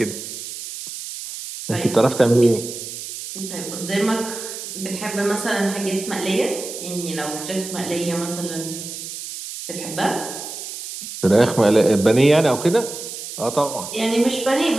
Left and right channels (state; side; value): noise; right; hiss, 9 dB below the sound